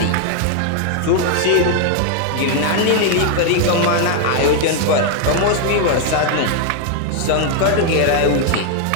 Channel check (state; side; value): different; both; correlation 0.00